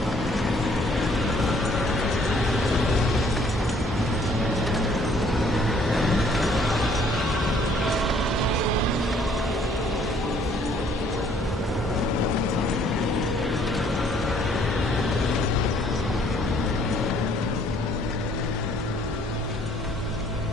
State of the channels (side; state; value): both; normal; correlation 0.62